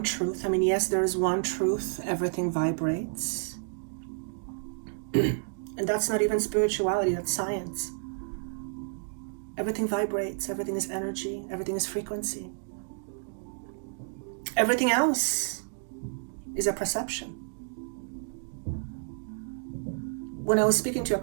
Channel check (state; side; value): silent; left; digital silence